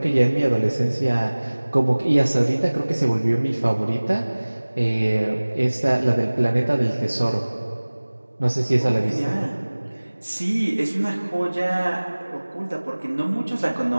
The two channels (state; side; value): inverted; both; correlation -1.00